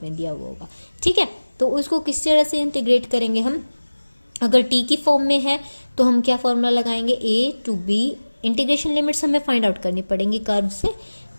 में दिया हुआ होगा। ठीक है, तो उसको किस तरह से इंटीग्रेट करेंगे हम, अगर t की फॉर्म में है तो हम क्या फॉर्मूला लगाएंगे, a to b, integration limits हमें फाइंड आउट करनी पड़ेंगी कर्व से।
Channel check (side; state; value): both; inverted; correlation -1.00